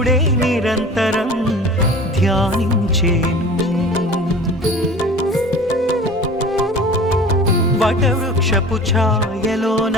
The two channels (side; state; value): both; normal; correlation 0.40